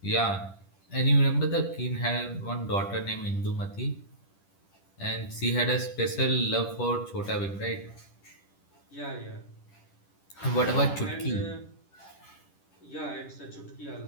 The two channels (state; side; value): late; right; 10 ms